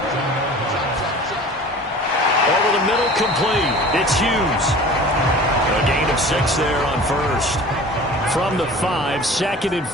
Over the middle, complete. It's Hughes. A gain of 6 there on 1st. From the 5, 2nd and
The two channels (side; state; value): both; normal; correlation 0.41